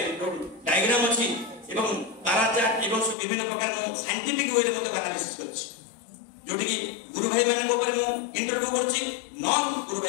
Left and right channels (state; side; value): drops out; right; at 3.2 s